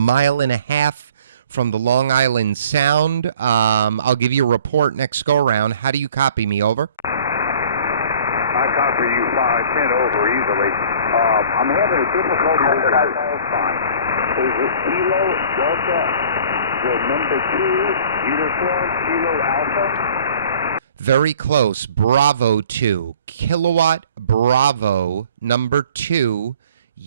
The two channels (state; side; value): inverted; both; correlation -0.51